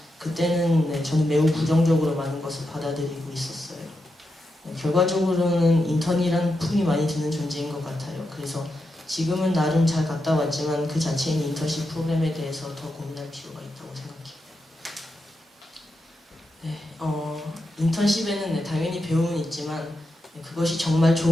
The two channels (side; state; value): both; normal; correlation 0.86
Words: 그때는 저는 매우 부정적으로 많은 것을 받아들이고 있었어요. 결과적으로는 인턴이란 품이 많이 드는 존재인 것 같아요. 그래서 지금은 나름 잘 갔다 왔지만 그 자체인 인턴십 프로그램에 대해서 더 고민할 필요가 있다고 생각해요. 인턴십에는 당연히 배움은 있지만 그것이 정말